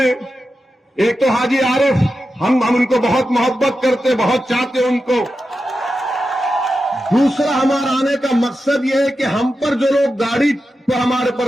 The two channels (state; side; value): normal; both; correlation 0.90